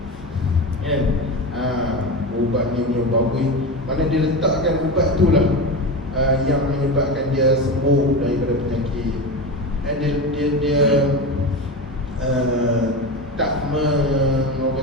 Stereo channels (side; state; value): both; normal; correlation 0.22